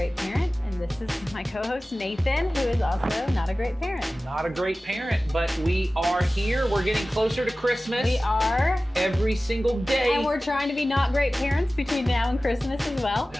parent. And this is my co-host Nathan, who is also not a great parent. Not a great parent, but we are here. We're getting closer to Christmas. We are. Every single day. And we're trying to be not great parents between now and Christmas as well.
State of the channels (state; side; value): normal; both; correlation 0.96